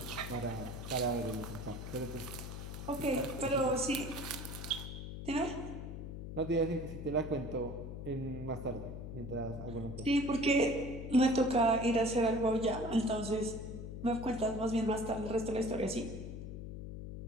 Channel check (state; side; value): noise; left; hum, 8 dB below the sound